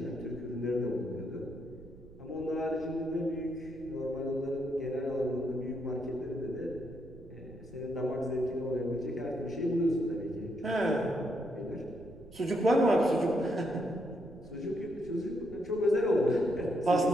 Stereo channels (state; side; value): noise; right; rumble, 20 dB below the sound